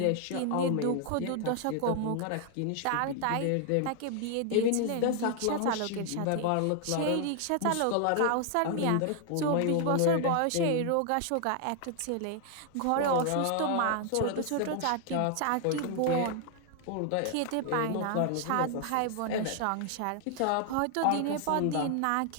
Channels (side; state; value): both; different; correlation 0.00